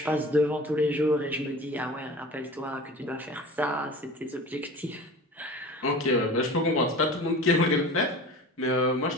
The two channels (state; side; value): normal; both; correlation 0.37